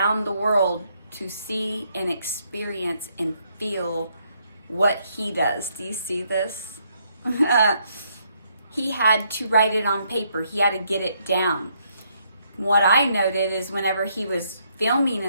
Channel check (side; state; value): both; inverted; correlation -0.73